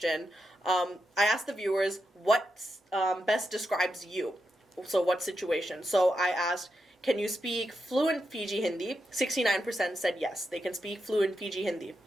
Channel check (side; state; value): both; normal; correlation 0.86